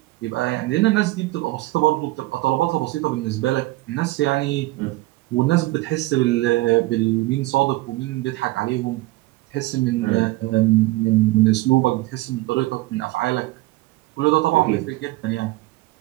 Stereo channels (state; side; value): quieter; left; 19.1 dB